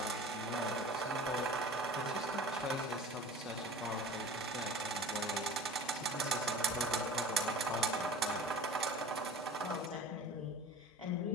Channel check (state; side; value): normal; both; correlation 0.39